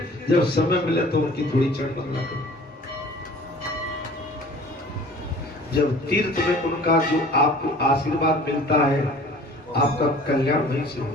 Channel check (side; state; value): both; normal; correlation 0.47